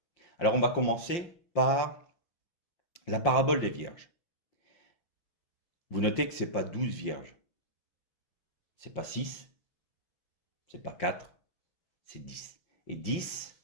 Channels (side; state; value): right; late; 5.8 ms